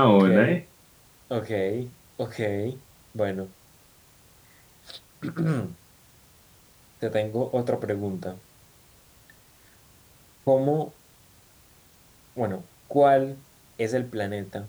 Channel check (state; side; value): identical; both; correlation 1.00